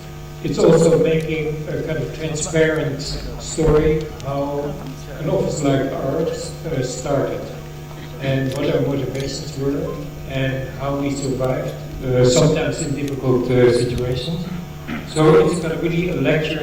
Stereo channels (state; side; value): identical; both; correlation 1.00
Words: It's also making a kind of transparent story how an office like ours started and what our motivations were and how we survived, sometimes in difficult situations. So it's going to be a